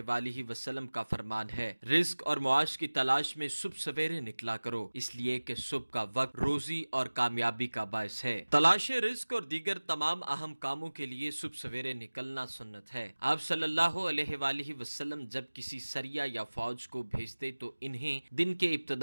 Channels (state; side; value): inverted; both; correlation -1.00